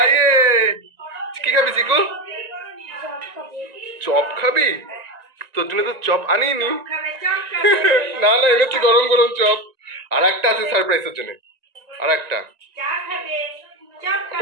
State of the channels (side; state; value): left; late; 1.9 ms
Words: ইয়ে কি খাবি চিকু? চপ খাবি? তোর জন্য তো চপ আনিনি। না না এনেছি গরম গরম চপ, আর একটা আছে সারপ্রাইজের জন্য, আর একটা